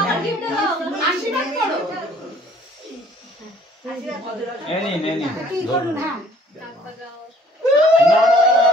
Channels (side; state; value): both; normal; correlation 0.57